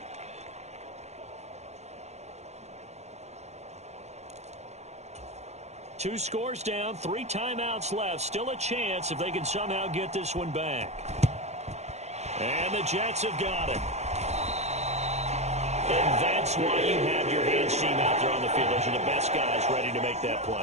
Two scores down, 3 timeouts left. Still a chance if they can somehow get this one back. And the Jets have got it. And that's why you have your hands team out there on the field. Those are the best guys ready to make that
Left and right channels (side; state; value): left; late; 0.32 ms